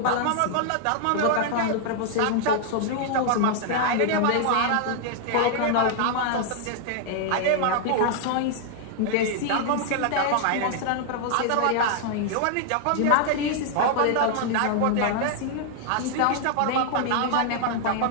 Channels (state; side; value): different; both; correlation -0.01